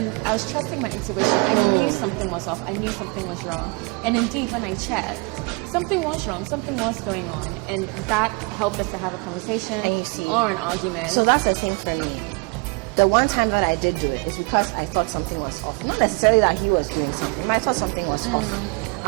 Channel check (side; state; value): left; quieter; 31.0 dB